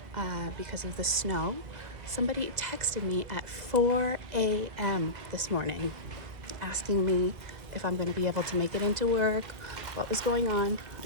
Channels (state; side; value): late; left; 2.0 ms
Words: because of the snow. Somebody texted me at 4 a.m. this morning asking me if I'm going to be able to make it into work, what was going on.